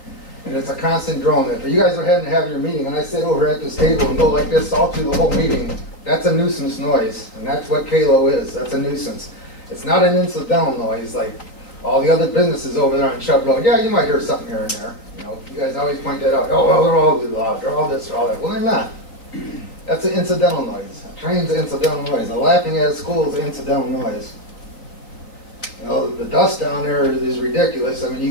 And it's a constant drone. If you guys are having to have your meeting and I sit over at this table and go like this all through the whole meeting, that's a nuisance noise. And that's what Kalo is. That's a nuisance. It's not an incidental noise like all the other businesses over there on Chubb Road. Yeah, you might hear something here and there. You know, you guys always point that out. Oh, well, they're all loud. They're all this, they're all that. Well, they're not. That's an incidental noise. A train's an incidental noise. A laughing at a school is an incidental noise. You know, the dust down there is ridiculous. I mean, you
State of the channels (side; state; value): right; late; 3.8 ms